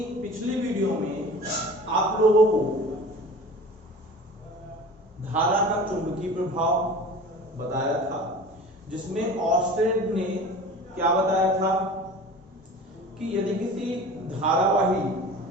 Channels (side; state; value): both; normal; correlation 0.39